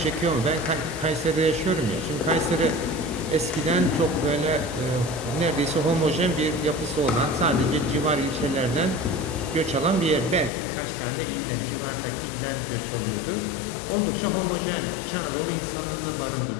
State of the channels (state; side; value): drops out; right; at 10.5 s